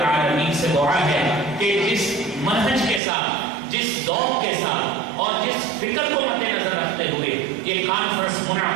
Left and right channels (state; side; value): drops out; left; at 3.0 s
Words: سے دعا ہے کہ جس منہج کے ساتھ، جس ذوق کے ساتھ اور جس فکر کو مد نظر رکھتے ہوئے یہ کانفرنس